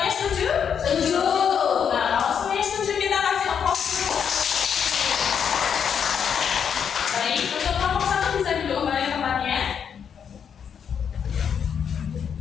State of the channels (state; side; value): quieter; right; 7.5 dB